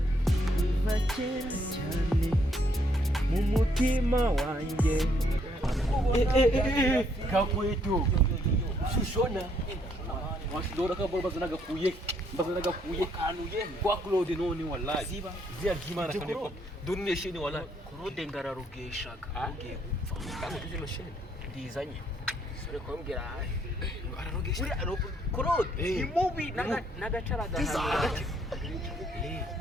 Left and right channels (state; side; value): normal; both; correlation 0.70